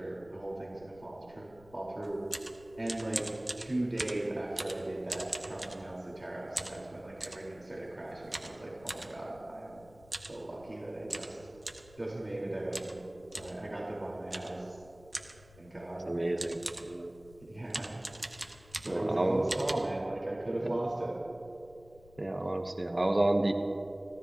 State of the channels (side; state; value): left; noise; rumble, 23 dB below the sound